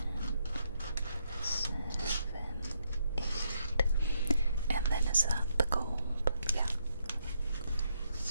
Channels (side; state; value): both; inverted; correlation -0.76